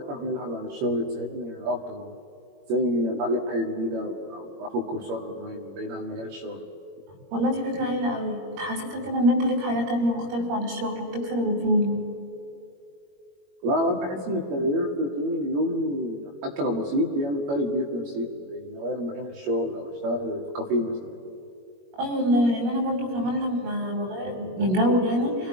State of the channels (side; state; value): left; late; 21 ms